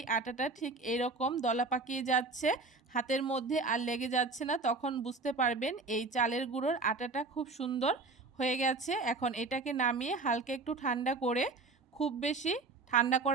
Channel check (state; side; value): quieter; left; 3.7 dB